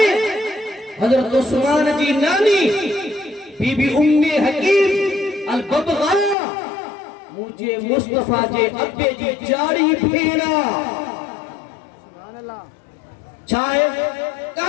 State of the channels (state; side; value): drops out; right; at 6.4 s